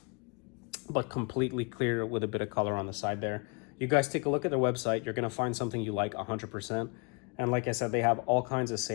but completely clear with a bit of color on the side there. You guys take a look at their website. You're gonna find something you like 100%. And like I said, they have all kinds of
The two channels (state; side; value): quieter; right; 33.7 dB